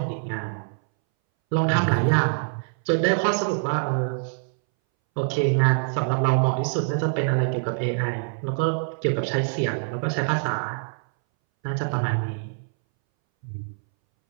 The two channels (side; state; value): left; silent; 61 dB below the other